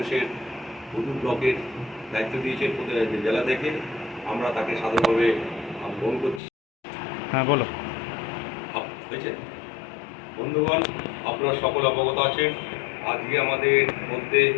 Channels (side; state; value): right; drops out; at 6.4 s